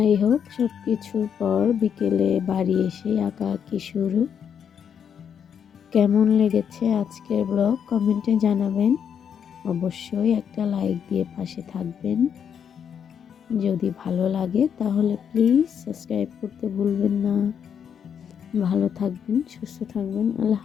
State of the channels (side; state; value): right; quieter; 7.9 dB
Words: হোক, সব কিছুর পর বিকেলে বাড়ি এসে আঁকাআঁকি শুরু। কেমন লেগেছে আজকের ব্লগ কমেন্টে জানাবেন। অবশ্যই একটা লাইক দিয়ে পাশে থাকবেন। যদি ভালো লাগে তাহলে প্লিজ সাবস্ক্রাইব করতে ভুলবেন না। ভালো থাকবেন, সুস্থ থাকবেন। আল্লাহ